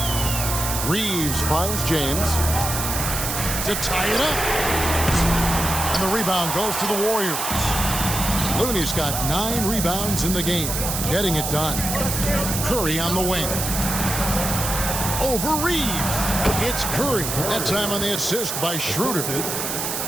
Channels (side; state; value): right; noise; hiss, 3 dB below the sound